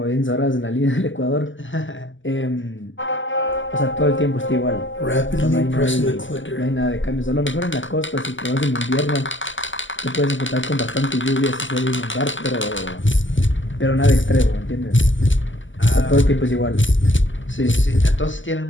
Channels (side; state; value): right; late; 0.55 ms